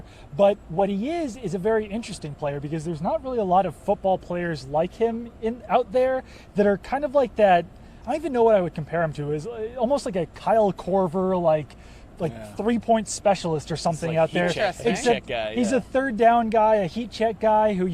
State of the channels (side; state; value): both; identical; correlation 1.00